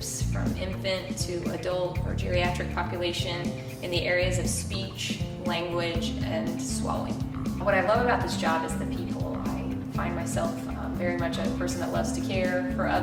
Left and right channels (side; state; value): both; identical; correlation 1.00